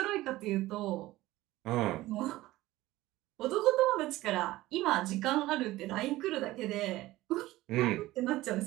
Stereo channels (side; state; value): left; quieter; 17.3 dB